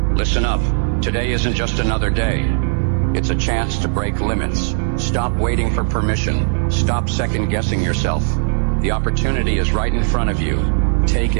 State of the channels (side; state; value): left; silent; digital silence